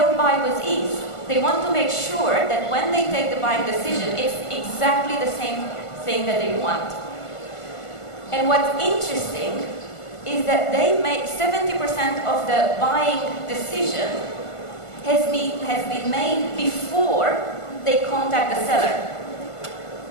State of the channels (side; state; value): right; late; 1.5 ms